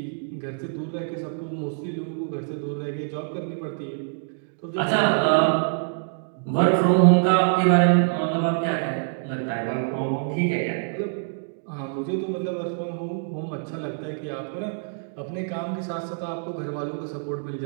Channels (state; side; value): silent; left; digital silence